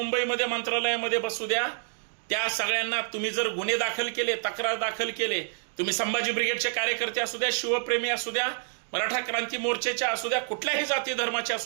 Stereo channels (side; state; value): left; silent; digital silence